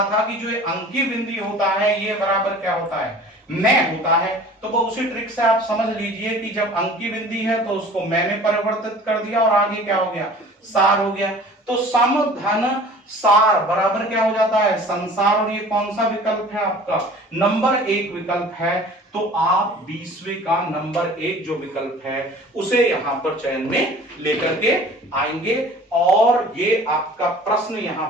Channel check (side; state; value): both; normal; correlation 0.45